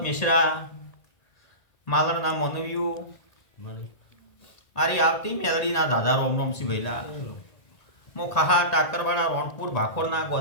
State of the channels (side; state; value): right; late; 1.8 ms